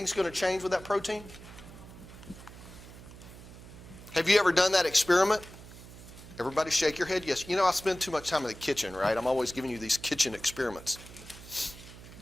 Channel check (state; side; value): noise; right; hum, 17 dB below the sound